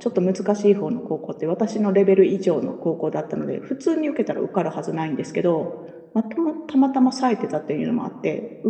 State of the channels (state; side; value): identical; both; correlation 1.00